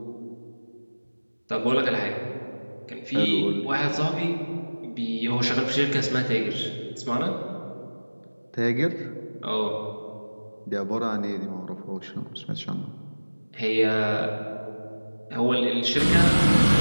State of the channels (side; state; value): both; inverted; correlation -1.00